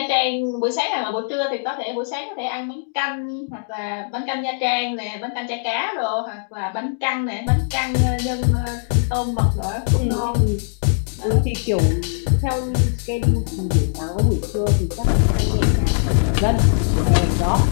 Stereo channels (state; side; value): silent; right; digital silence